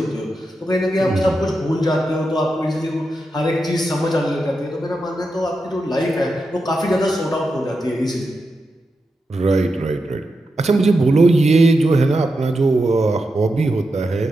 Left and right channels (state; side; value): normal; both; correlation 0.88